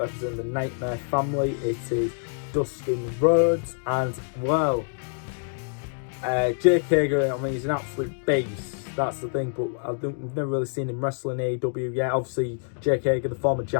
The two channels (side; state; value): right; silent; digital silence